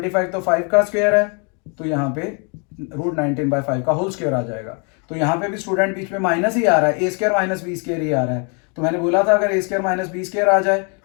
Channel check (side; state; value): right; quieter; 36.3 dB